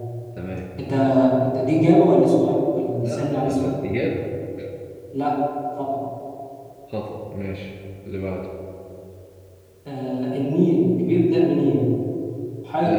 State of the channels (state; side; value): identical; both; correlation 1.00